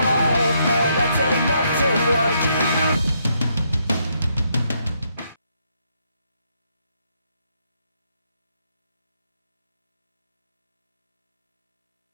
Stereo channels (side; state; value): both; inverted; correlation -0.75